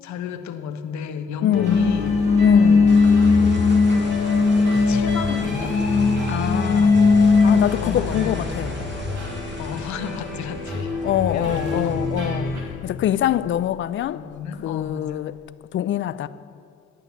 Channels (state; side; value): quieter; right; 4.8 dB